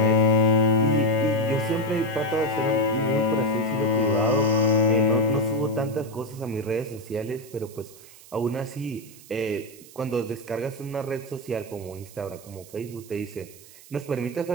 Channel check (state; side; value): noise; right; hiss, 21 dB below the sound